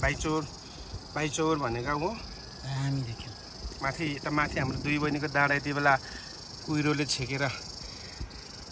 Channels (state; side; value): identical; both; correlation 1.00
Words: बाइचौर भन्ने गाउँ हो। हामी देख्यौँ माथि हाम्रो दुई बहिनीको डाँडा यति बेला कुहिरोले छेकेर